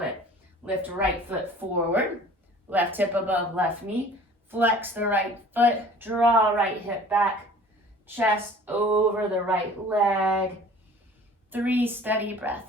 Lift right foot forward. Left hip above left knee. Flex the right foot. Draw right hip back. Chest over the right leg. 3 steady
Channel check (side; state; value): both; normal; correlation 0.47